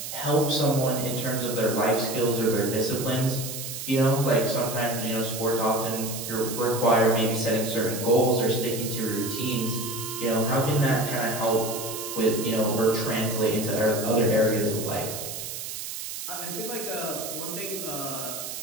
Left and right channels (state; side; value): noise; right; hiss, 7 dB below the sound